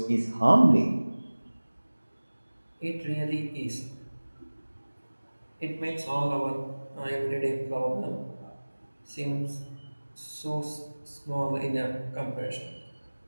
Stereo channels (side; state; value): both; inverted; correlation -1.00